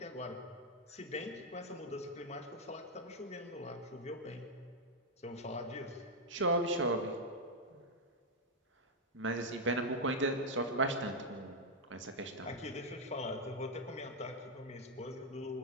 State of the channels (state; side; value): normal; both; correlation -0.01